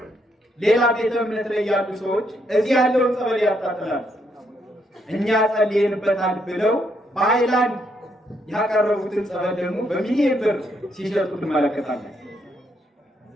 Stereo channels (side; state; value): both; normal; correlation 0.75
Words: ሌላ ቤተ እምነት ላይ ያሉ ሰዎች እዚህ ያለውን ጸበል ያጣጥላሉ። እኛ ጸልየንበታል ብለው በሃይላንድ ያቀረቡትን ጸበል ደግሞ በሚሊዮን ብር ሲሸጡ ትመለከታለን።